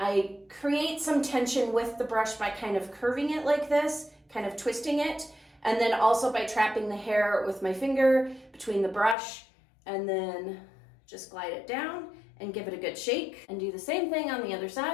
create some tension with the brush by kind of curving it like this, kind of twisting it, and then also by trapping the hair with my finger between the brush, and then just glide it down and give it a good shake, and do the same thing on the other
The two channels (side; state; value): right; drops out; at 9.2 s